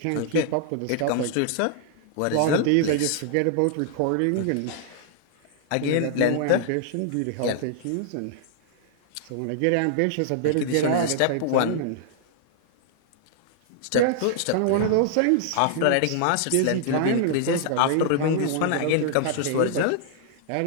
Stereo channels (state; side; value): different; both; correlation -0.01